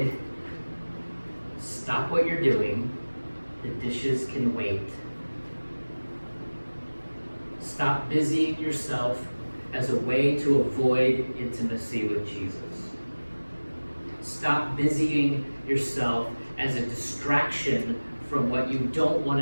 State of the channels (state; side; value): inverted; both; correlation -1.00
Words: stop what you're doing. The dishes can wait. Stop busying yourself as a way to avoid intimacy with Jesus. Stop busying yourself as a distraction from what you don't want